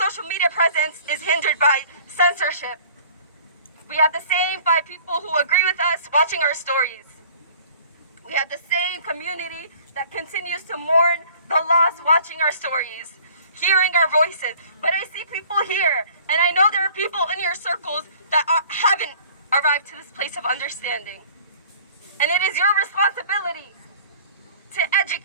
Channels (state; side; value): inverted; both; correlation -0.51